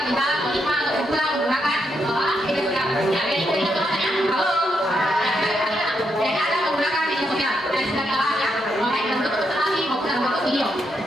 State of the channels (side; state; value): both; normal; correlation 0.80